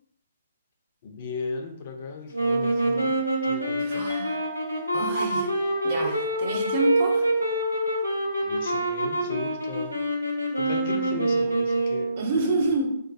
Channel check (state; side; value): inverted; both; correlation -0.74